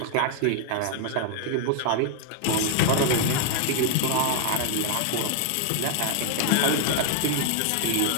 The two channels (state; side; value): different; both; correlation 0.00